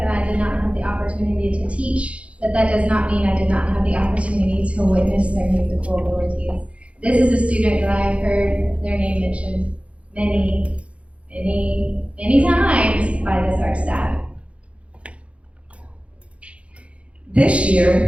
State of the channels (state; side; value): late; left; 0.062 ms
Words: I did not have the opportunity to teach, but that does not mean I did not have the opportunity to witness their musical abilities. This is a student that I have heard their name mentioned many times by this art staff. This